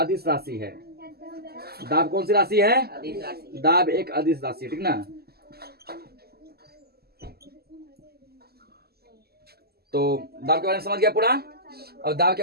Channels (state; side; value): late; left; 0.46 ms